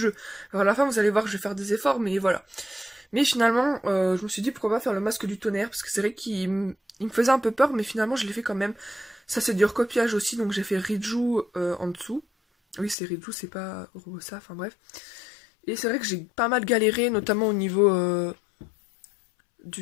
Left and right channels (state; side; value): drops out; right; at 13.0 s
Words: Alors à la fin, vous allez voir que je vais faire des efforts, mais voilà. Mais finalement, je me suis dit pourquoi pas faire le masque du tonnerre, parce que c'est vrai qu'il me faisait un peu peur, mais finalement je l'ai fait quand même. Ça c'est du recopiage aussi, donc j'ai fait Riju en dessous. Oui, c'est Riju, c'est pas Robosa, enfin bref. Et c'est vrai que j'ai pas mal galéré, notamment au niveau